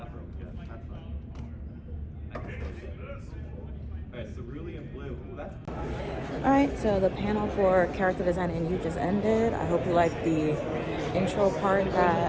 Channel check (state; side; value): identical; both; correlation 1.00